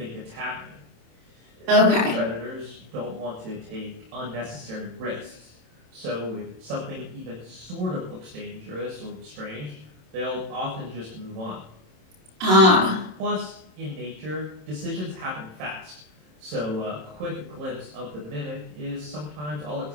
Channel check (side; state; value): left; late; 27 ms